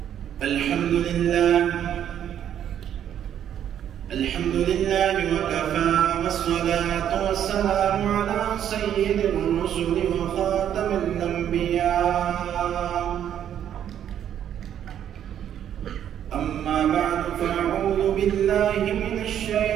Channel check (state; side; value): quieter; left; 9.9 dB